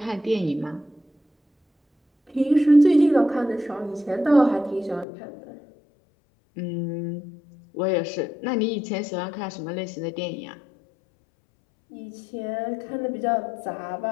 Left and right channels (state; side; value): drops out; right; at 5.1 s